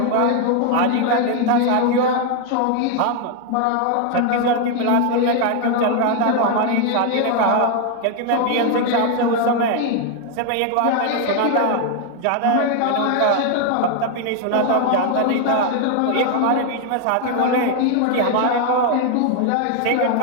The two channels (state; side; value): different; both; correlation 0.00